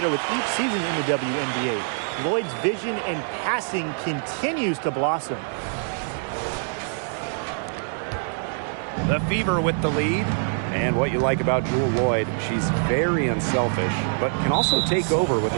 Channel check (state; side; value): silent; left; digital silence